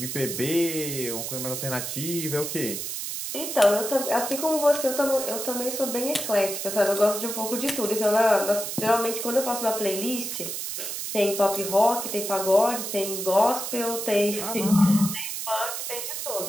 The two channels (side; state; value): right; noise; hiss, 5 dB below the sound